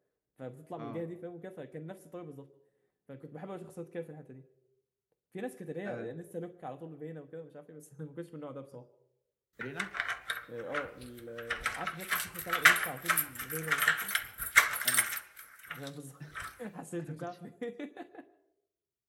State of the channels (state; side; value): identical; both; correlation 1.00